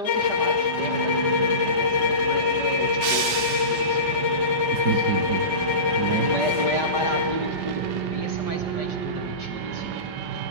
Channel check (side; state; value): left; late; 5.1 ms